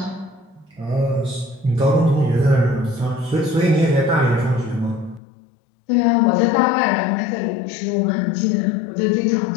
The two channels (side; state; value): right; drops out; at 5.2 s